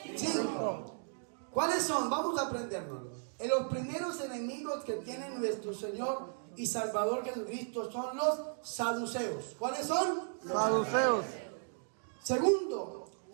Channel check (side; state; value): left; silent; digital silence